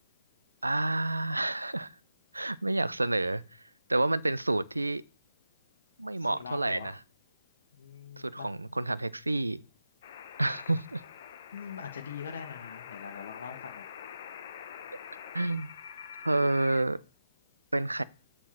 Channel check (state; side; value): inverted; both; correlation -0.96